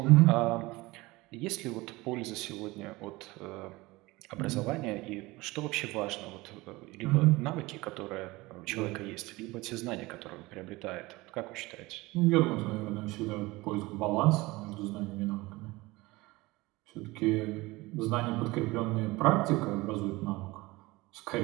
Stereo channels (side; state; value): left; quieter; 21.3 dB